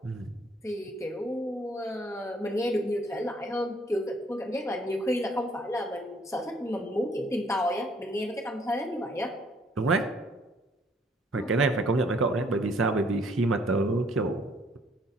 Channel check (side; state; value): both; normal; correlation 0.63